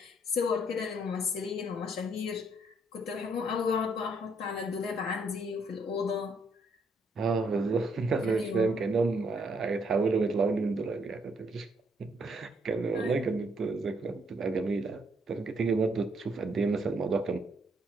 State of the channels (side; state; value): both; normal; correlation 0.70